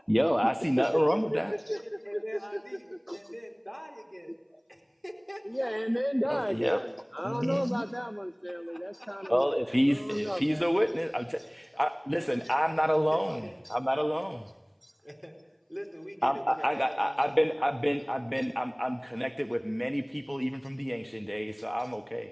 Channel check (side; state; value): both; identical; correlation 1.00